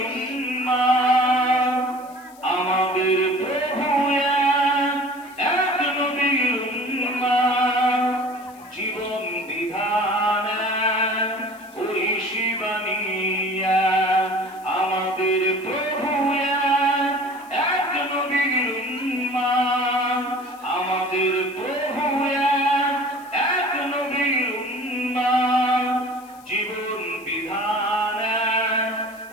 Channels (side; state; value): left; noise; hiss, 25 dB below the sound